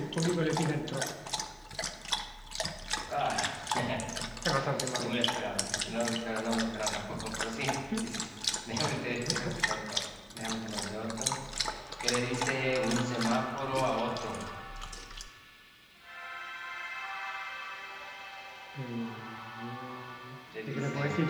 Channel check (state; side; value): identical; both; correlation 1.00